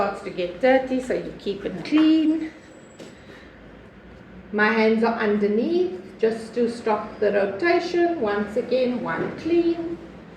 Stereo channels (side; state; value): both; identical; correlation 1.00